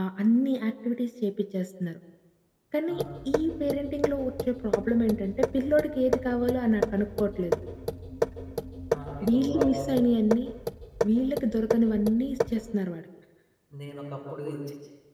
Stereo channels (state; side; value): identical; both; correlation 1.00